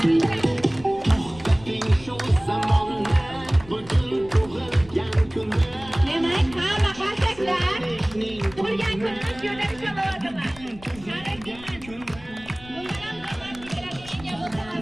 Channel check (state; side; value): noise; left; rumble, 20 dB below the sound